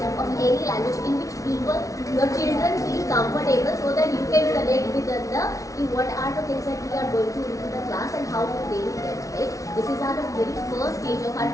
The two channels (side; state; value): right; late; 0.16 ms